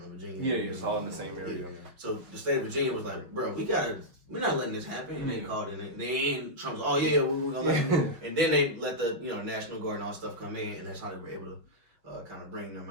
Virginia. Yeah, it's all in the same area. So the state of Virginia was like, bro, we're not letting this happen. And they called in. They ain't Trump's. Oh yeah, we're gonna let you. And then they let the National Guard and all stuff come in, and that's how they were able to kind of bring them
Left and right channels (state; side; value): late; left; 5.6 ms